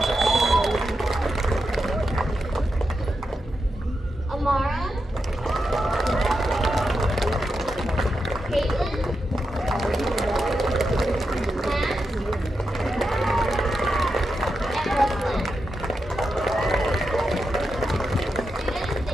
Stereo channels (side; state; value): both; normal; correlation 0.87